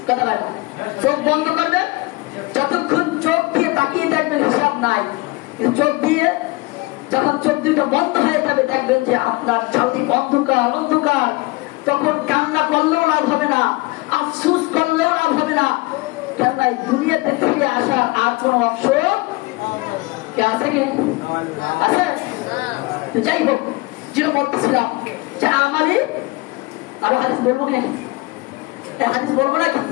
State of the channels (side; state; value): right; quieter; 23.4 dB